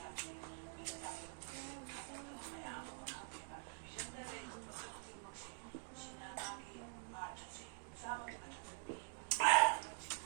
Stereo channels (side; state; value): left; silent; digital silence